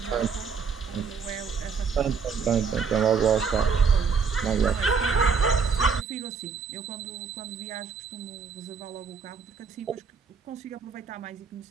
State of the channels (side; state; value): left; quieter; 5.8 dB